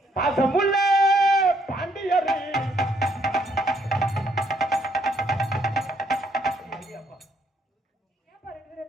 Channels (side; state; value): both; normal; correlation 0.70